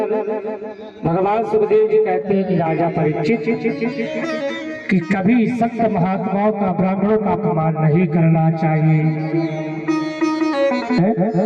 भगवान सुखदेव जी कहते हैं कि राजा परीक्षित कि कभी संत महात्माओं का ब्राह्मणों का अपमान नहीं करना चाहिए।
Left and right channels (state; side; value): identical; both; correlation 1.00